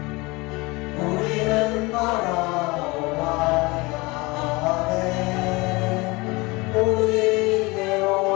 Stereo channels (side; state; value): right; quieter; 24.3 dB